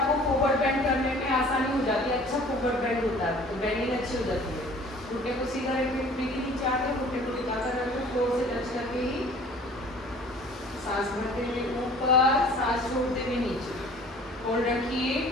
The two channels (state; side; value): normal; both; correlation 0.49